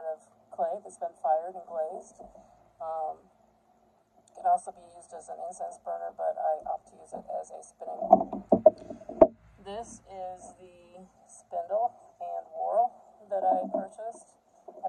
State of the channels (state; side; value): identical; both; correlation 1.00